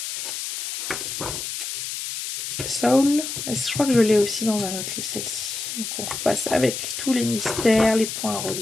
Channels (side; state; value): left; noise; hiss, 5 dB below the sound